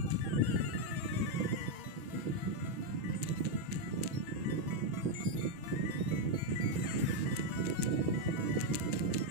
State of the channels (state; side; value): late; left; 6.2 ms